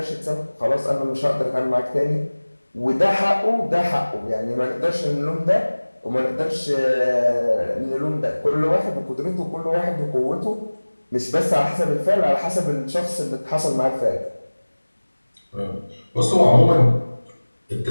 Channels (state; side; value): inverted; both; correlation -1.00